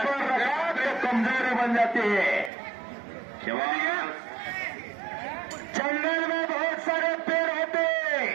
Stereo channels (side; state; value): left; drops out; at 2.5 s